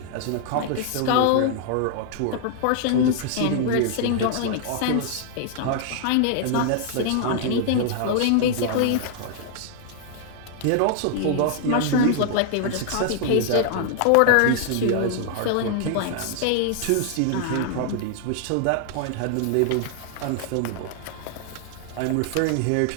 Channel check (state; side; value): different; both; correlation -0.01